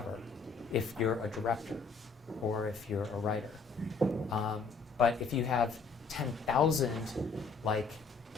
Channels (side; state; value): right; quieter; 4.7 dB